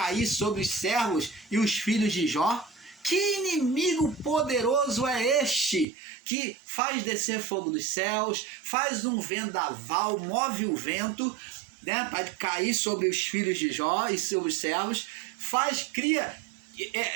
sobre os servos e os filhos de Jó? Que inimigo poderoso é este que faz descer fogo dos céus, faz um vendaval, move o vento, né, para cair sobre os filhos de Jó e sobre os servos,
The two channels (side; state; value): left; drops out; at 5.9 s